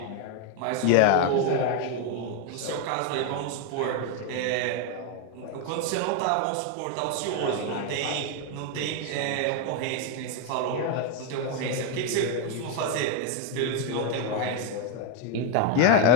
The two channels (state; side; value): different; both; correlation 0.01